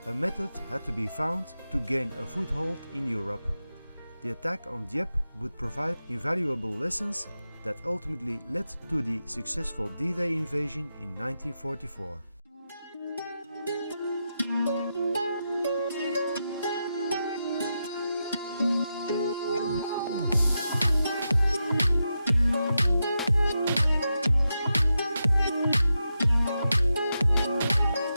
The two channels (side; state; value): both; inverted; correlation -0.88